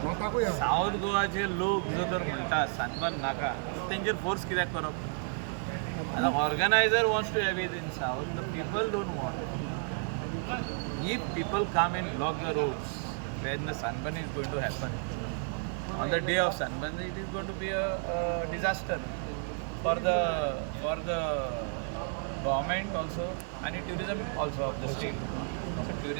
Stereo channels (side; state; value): left; silent; 57 dB below the other